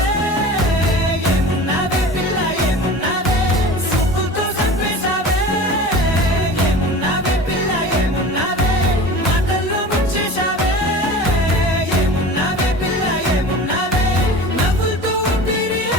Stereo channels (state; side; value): normal; both; correlation 0.36